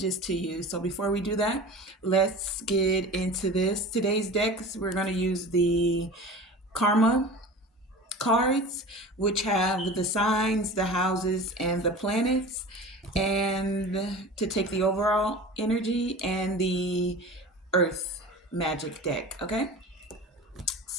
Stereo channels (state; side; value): normal; both; correlation 0.36